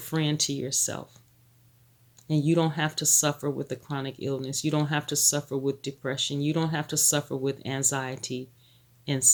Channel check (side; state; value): both; identical; correlation 1.00